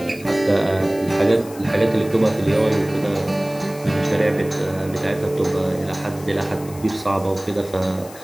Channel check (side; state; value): left; noise; hiss, 19 dB below the sound